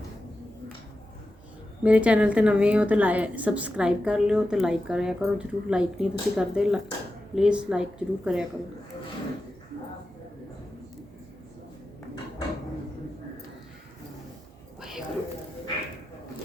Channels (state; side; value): normal; both; correlation 0.91